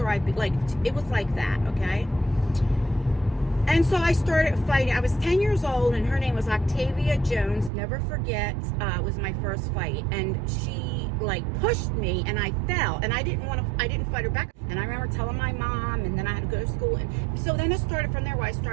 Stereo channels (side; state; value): left; drops out; at 7.7 s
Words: it was like that, okay? And so I started fighting. I was 10 years old, and her name was Octavia Jones. Never forget, it was my first fight. And she, like, pushed me, and I fell. And I didn't fight her back. And I remember telling my mom, and then I had to go to school. And so then it started from there where I